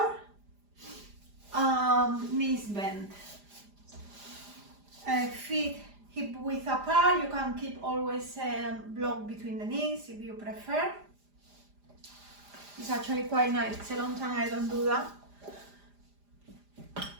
knees bent. Feet hip width apart. You can keep always block between the knees if you prefer. It's actually quite nice. It's a long time I don't do that.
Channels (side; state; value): left; late; 5.0 ms